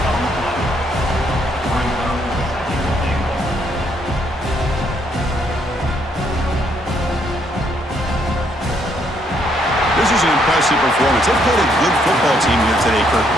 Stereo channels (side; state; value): both; normal; correlation 0.71